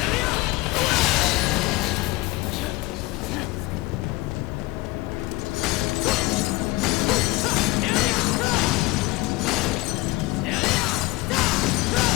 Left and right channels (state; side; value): quieter; right; 21.1 dB